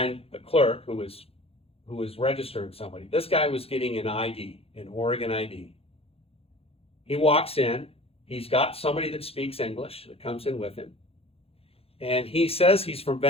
the clerk who was registering somebody. This guy was getting an ID, an Oregon ID. He walks in, he's got somebody that speaks English that comes in with him, and he says he's from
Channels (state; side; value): late; right; 0.28 ms